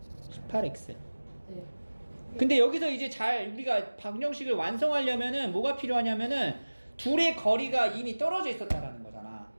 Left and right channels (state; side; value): inverted; both; correlation -1.00